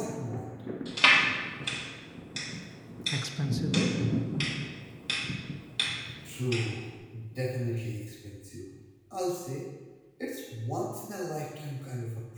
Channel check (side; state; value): both; identical; correlation 1.00